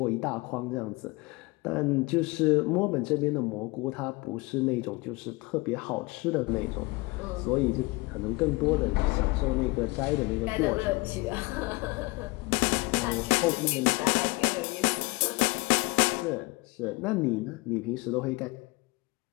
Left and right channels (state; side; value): quieter; right; 24.2 dB